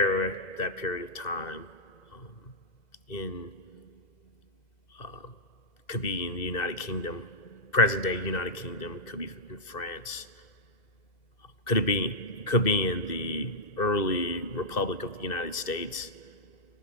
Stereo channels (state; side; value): late; right; 2.0 ms